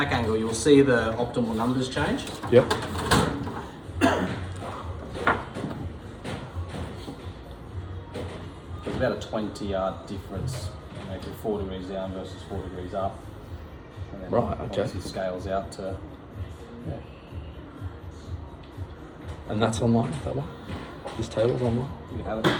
angle, you'll see the optimal numbers change. Yep. It's about a 20-yard difference, maybe 4 degrees down versus 4 degrees up. And then Right, okay. obviously scales out to. Yeah. And that's online, that one? This table's online? You can have it.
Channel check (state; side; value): identical; both; correlation 1.00